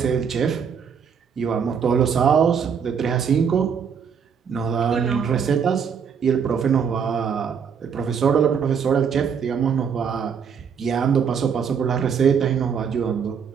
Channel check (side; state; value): left; quieter; 6.9 dB